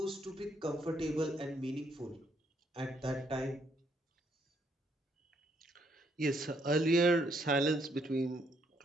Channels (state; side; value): normal; both; correlation 0.72